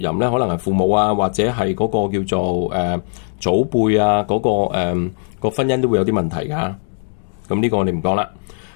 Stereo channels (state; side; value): silent; right; digital silence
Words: 咧，可能係父母啊，或者係嗰個叫做祖輩啊，嗰個婚姻都會有啲問題㗎。咁呢個我哋唔講啦。